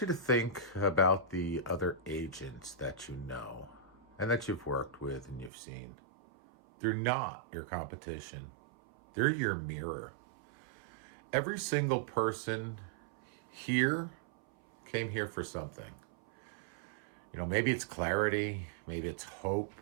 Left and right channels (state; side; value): drops out; left; at 5.5 s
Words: you to think about the other agents that you know and that you've worked with and you've seen. They're not your competition. They're your mirror. Every single person here came here for something. Maybe it's clarity, maybe it's hope,